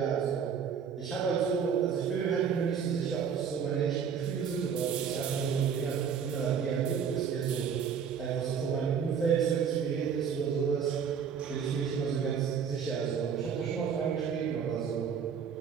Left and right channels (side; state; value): left; quieter; 7.2 dB